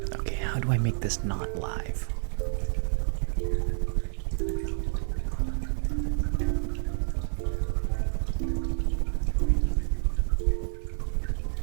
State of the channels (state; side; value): silent; left; 59 dB below the other